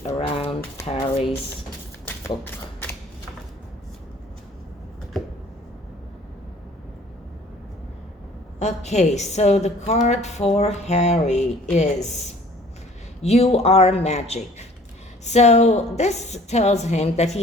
around Harry's book. Okay, so the card for Harry is You Are Magic. So this tells him that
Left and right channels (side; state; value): both; normal; correlation 0.52